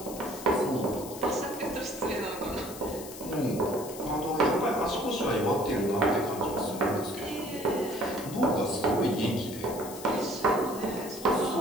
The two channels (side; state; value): left; noise; hiss, 13 dB below the sound